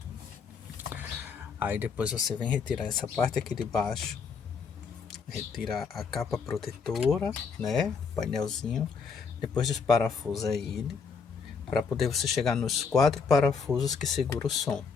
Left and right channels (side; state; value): right; quieter; 5.5 dB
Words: Aí depois você vem retirar essa parte aqui de baixo, retira a capa protetora, né, painelzinho, depois desparafusa ele, para poder você chegar nos 4 parafusos que segura o som.